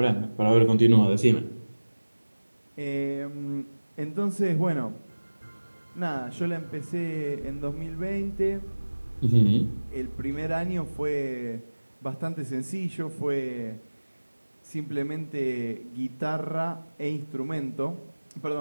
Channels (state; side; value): inverted; both; correlation -1.00